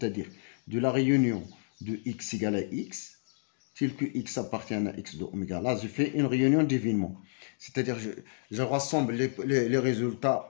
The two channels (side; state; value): right; silent; digital silence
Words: de la réunion de X égale à X, tel que X appartient à X de oméga. Là, je fais une réunion d'événements. C'est-à-dire, je rassemble les